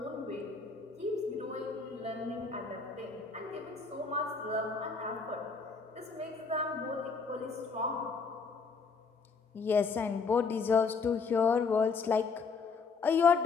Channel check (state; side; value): quieter; right; 4.9 dB